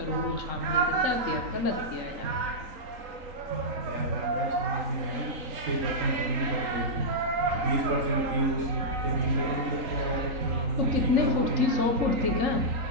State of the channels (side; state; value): left; late; 3.9 ms